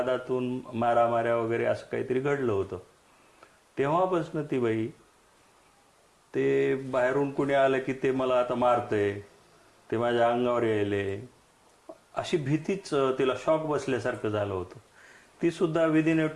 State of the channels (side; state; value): both; identical; correlation 1.00